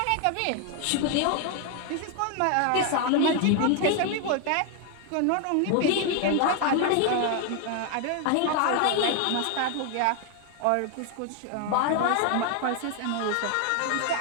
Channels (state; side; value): different; both; correlation 0.01